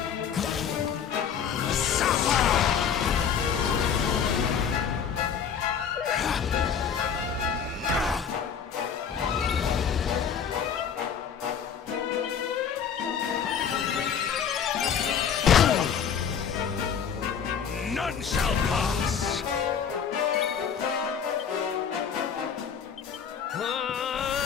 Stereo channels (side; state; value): right; quieter; 7.5 dB